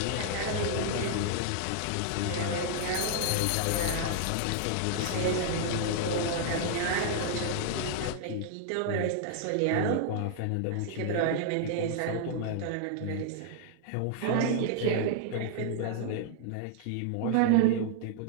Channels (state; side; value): different; both; correlation -0.01